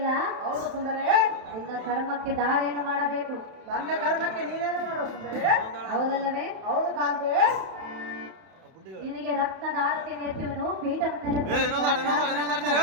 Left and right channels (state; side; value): late; left; 31 ms